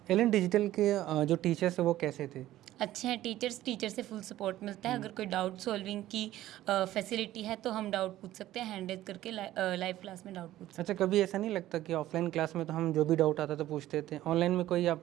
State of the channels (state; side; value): quieter; left; 14.4 dB